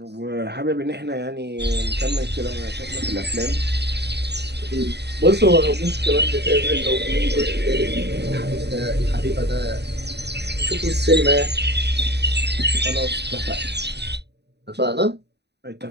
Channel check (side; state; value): left; late; 0.49 ms